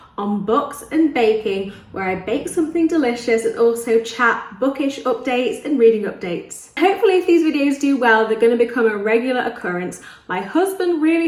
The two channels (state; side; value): identical; both; correlation 1.00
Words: on books and baking, where I bake something delicious and also chat bookish updates and reading updates. Hopefully if these videos do well, they're going to become a regular occurrence. My husband